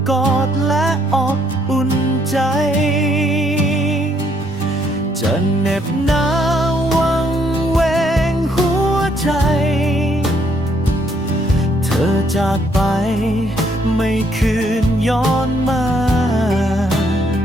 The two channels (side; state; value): both; normal; correlation 0.69